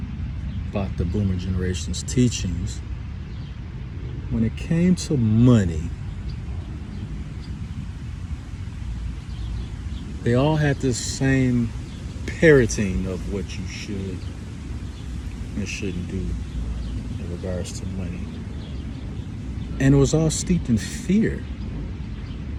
about the boomer generation's teachings, when it came to money, they all had this same parroting of what you should and shouldn't do in regards to money. And it was all steeped in fear.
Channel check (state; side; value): identical; both; correlation 1.00